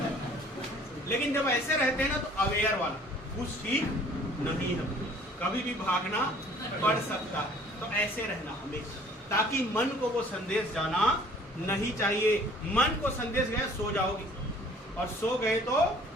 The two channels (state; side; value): normal; both; correlation 0.54